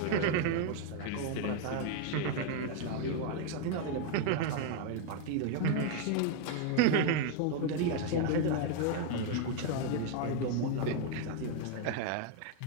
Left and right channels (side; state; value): both; different; correlation 0.01